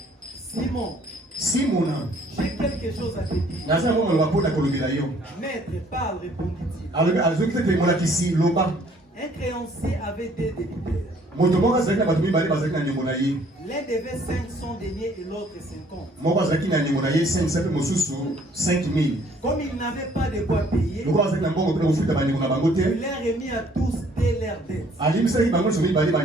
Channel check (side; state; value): both; normal; correlation 0.60